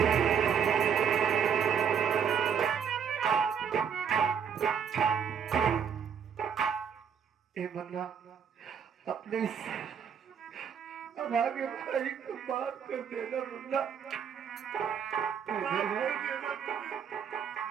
मन्ना अपने इस अभागे भाई को माफ कर देना मुन्ना,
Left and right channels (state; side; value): quieter; left; 7.5 dB